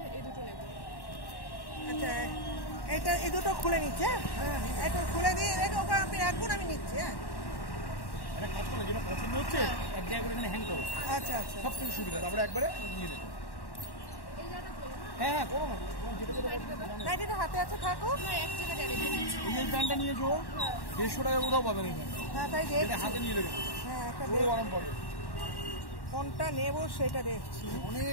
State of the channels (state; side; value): late; right; 1.1 ms